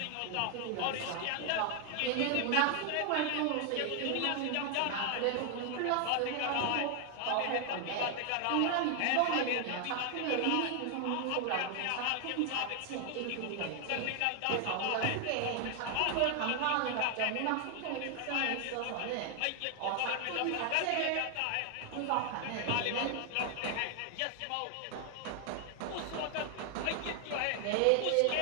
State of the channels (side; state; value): both; different; correlation 0.00